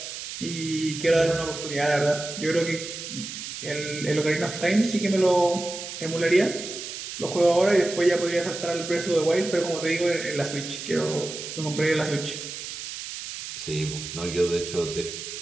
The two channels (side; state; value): right; noise; hiss, 9 dB below the sound